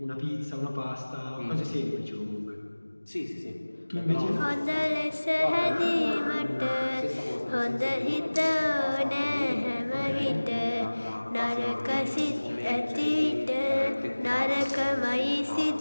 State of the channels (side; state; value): both; inverted; correlation -1.00